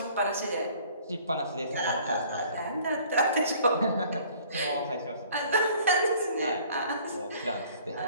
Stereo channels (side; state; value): both; inverted; correlation -0.54